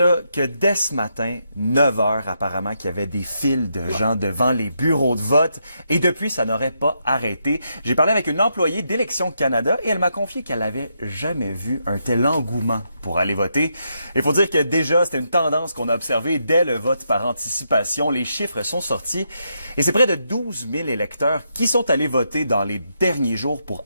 que dès ce matin, 9 heures apparemment, qu'il y avait des files de gens devant les bureaux de vote et depuis, ça n'aurait pas arrêté. J'ai parlé avec une employée d'Élections Canada et elle m'a confié qu'elle n'avait jamais vu un tel engouement pour aller voter. Il faut dire que déjà, c'était une tendance qu'on a observée dès le vote par anticipation. Les chiffres sont sortis et c'est près de 12 000 électeurs qui sont allés voter dans les derniers jours pour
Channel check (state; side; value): inverted; both; correlation -0.80